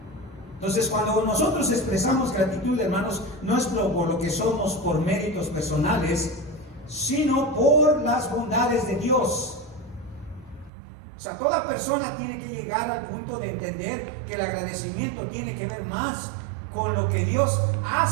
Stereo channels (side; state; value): left; drops out; at 10.7 s